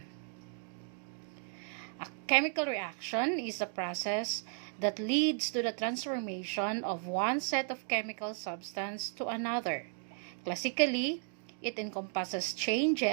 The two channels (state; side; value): silent; left; 55 dB below the other